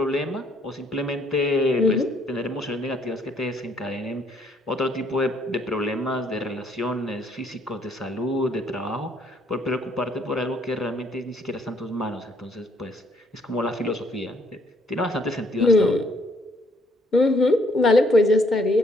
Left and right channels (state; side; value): normal; both; correlation 0.67